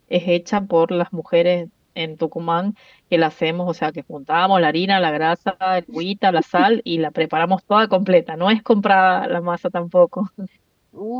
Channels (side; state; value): both; identical; correlation 1.00